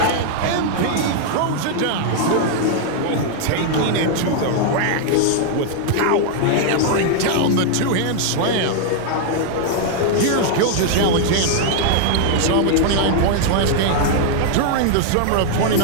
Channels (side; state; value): both; different; correlation 0.00